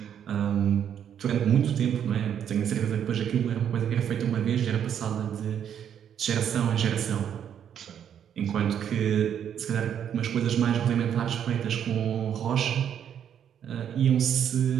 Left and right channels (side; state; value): left; quieter; 9.0 dB